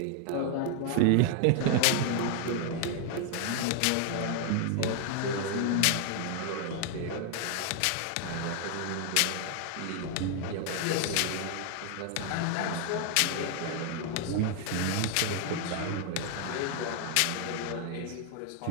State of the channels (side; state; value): both; different; correlation 0.00